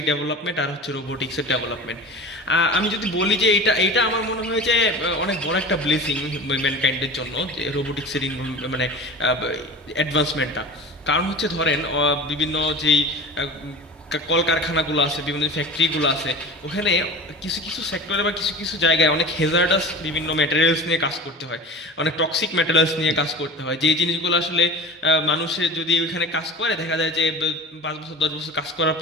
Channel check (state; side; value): normal; both; correlation 0.35